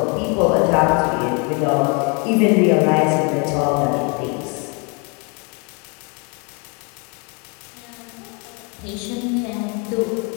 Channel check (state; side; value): quieter; right; 33.8 dB